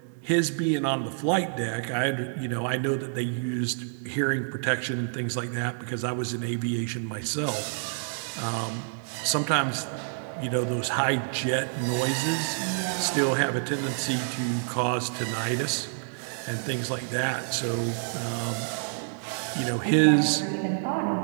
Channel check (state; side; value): silent; left; digital silence